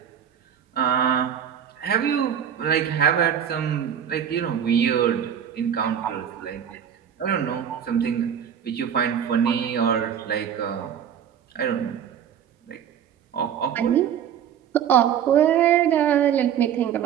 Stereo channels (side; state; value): left; quieter; 8.9 dB